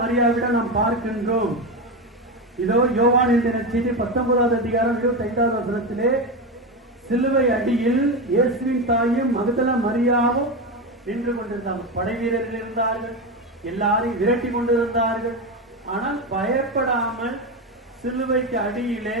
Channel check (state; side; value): normal; both; correlation 0.16